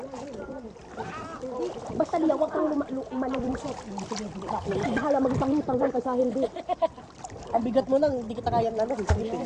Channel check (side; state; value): both; identical; correlation 1.00